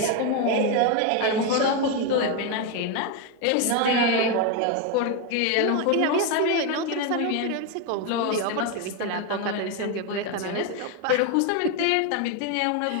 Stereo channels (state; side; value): different; both; correlation 0.02